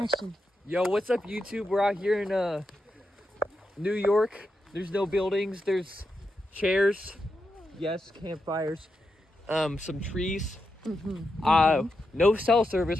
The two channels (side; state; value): both; normal; correlation 0.86